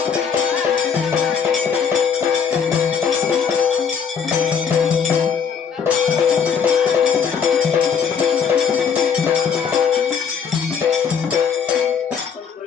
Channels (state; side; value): quieter; right; 6.7 dB